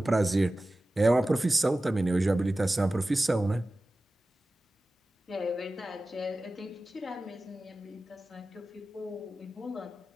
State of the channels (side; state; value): both; normal; correlation 0.95